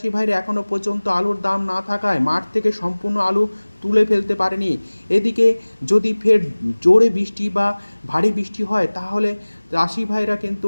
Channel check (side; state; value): both; inverted; correlation -1.00